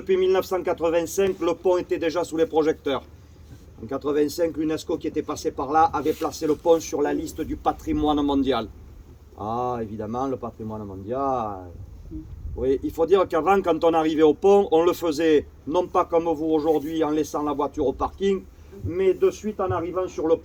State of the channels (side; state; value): both; identical; correlation 1.00